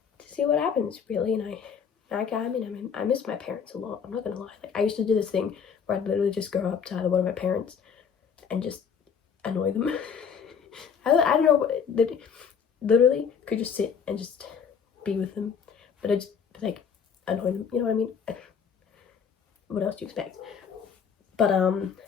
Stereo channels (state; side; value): quieter; right; 6.8 dB